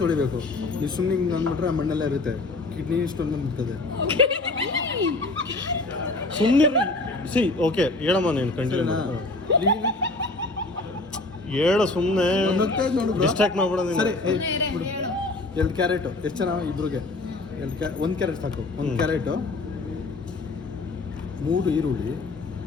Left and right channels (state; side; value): quieter; right; 3.0 dB